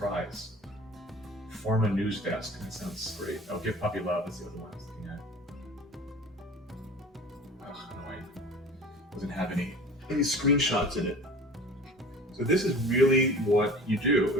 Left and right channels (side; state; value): both; normal; correlation 0.41